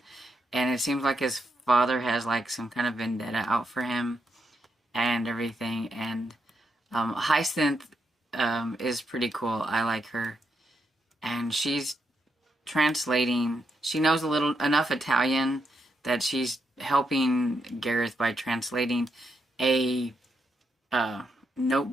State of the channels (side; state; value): both; normal; correlation 0.81